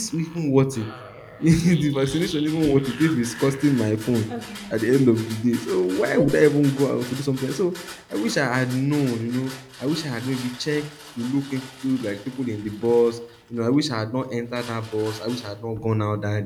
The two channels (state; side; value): identical; both; correlation 1.00